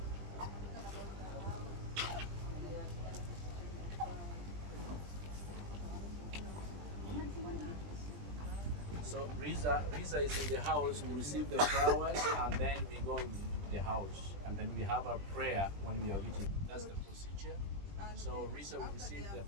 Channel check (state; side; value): late; left; 20 ms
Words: So Riza is in the house. We receive the flowers and then we go in the house and then we have a prayer when we are reaching. That's the procedure. So Riza will receive the